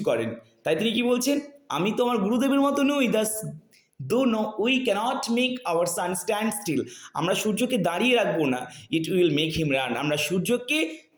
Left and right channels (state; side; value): identical; both; correlation 1.00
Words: করেন। তাই তিনি কি বলছেন? আমি তো আমার গুরুদেবের মতো নই, though no we cannot make our sun stand still, আমরা সূর্যকে দাঁড়িয়ে রাখবো না, it will make him run, আমরা সূর্যকে